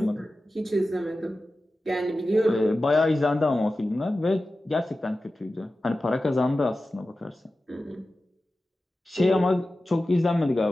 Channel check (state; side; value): normal; both; correlation 0.94